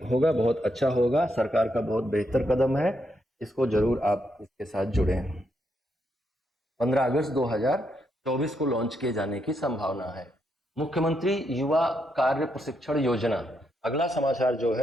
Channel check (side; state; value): both; normal; correlation 0.79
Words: होगा, बहुत अच्छा होगा, सरकार का बहुत बेहतर कदम है। इसको जरूर आप इसके साथ जुड़ें। 15 अगस्त 2024 को लॉन्च किए जाने की संभावना है। मुख्यमंत्री युवा कार्य प्रशिक्षण योजना, अगला समाचार जो